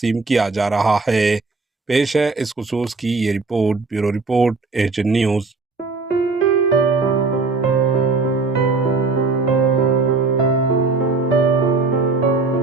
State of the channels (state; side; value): quieter; left; 4.0 dB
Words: किया जा रहा है। पेश है इस खुसूस की ये report. Bureau report, Asian news.